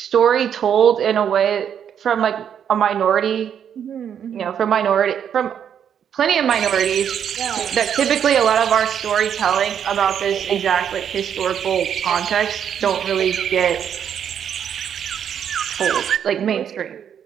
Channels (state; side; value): quieter; left; 8.6 dB